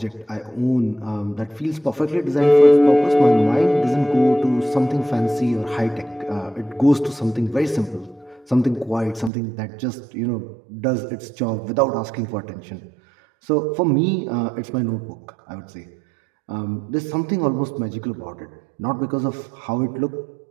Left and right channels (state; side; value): drops out; left; at 9.3 s